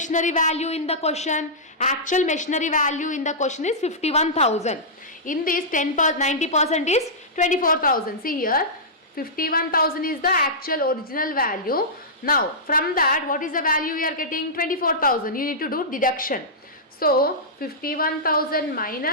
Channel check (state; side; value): normal; both; correlation -0.14